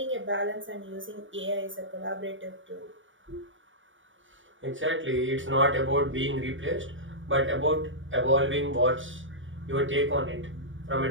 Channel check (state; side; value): late; left; 0.56 ms